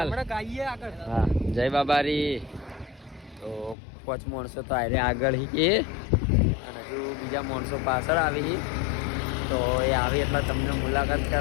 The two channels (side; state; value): right; drops out; at 3.8 s